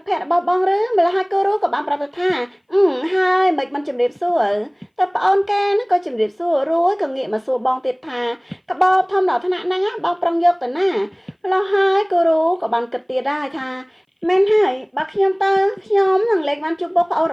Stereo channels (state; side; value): identical; both; correlation 1.00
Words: តភក្តិរបស់បងឬម្ល៉េះហើយគូរូក៏បានប្រាប់ទៅថាហើយមិនជំរាបសួរតែប្អូនគេក៏ជំរាបសួររួចក៏ងាកមកសួរបងទៀតថាកបោបធំដល់ថ្នាក់ហ្នឹងបងប្រឹងយកទៅណាម្ល៉េះហើយគូរូក៏បានគិតទៀតដែរថាមែនហើយបើខ្ញុំទៅខ្ញុំនឹងលេងបានជួបបងប្អូន